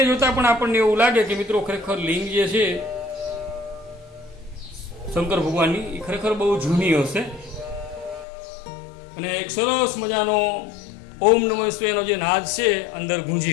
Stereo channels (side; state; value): right; drops out; at 8.2 s